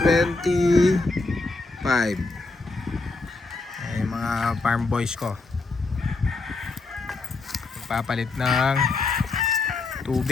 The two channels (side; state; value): right; quieter; 3.7 dB